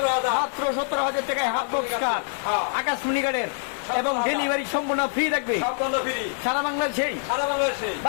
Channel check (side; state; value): right; silent; 62 dB below the other